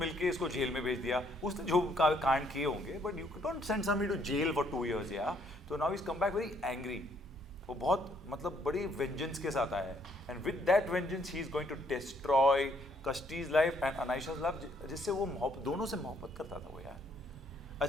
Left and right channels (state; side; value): normal; both; correlation 0.68